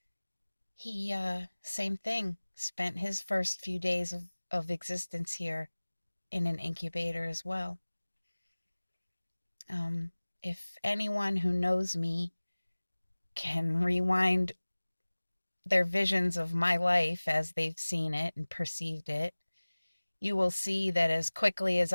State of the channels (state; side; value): inverted; both; correlation -1.00